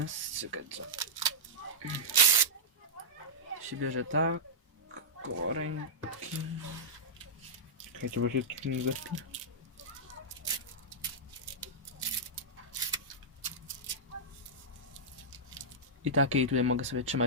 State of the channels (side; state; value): both; normal; correlation -0.11